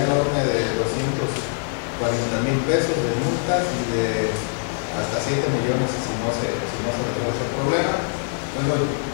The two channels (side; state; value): right; silent; digital silence